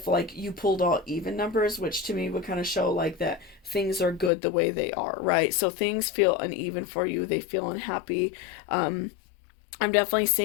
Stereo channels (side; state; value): right; drops out; at 4.3 s